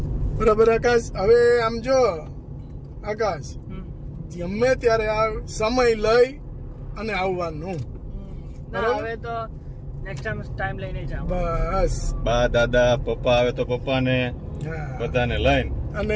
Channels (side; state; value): both; identical; correlation 1.00